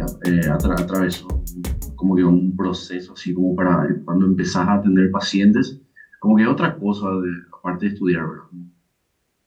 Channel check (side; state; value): both; identical; correlation 1.00